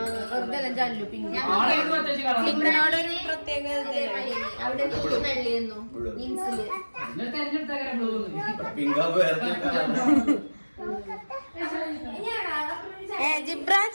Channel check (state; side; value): inverted; both; correlation -1.00